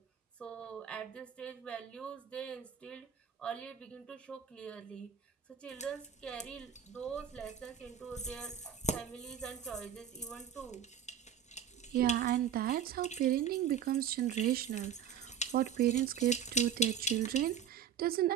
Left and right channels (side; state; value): left; quieter; 8.5 dB